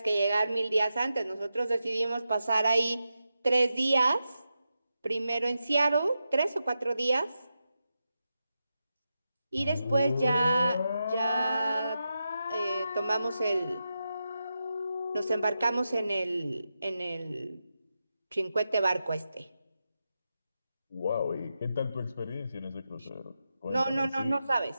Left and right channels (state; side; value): inverted; both; correlation -0.89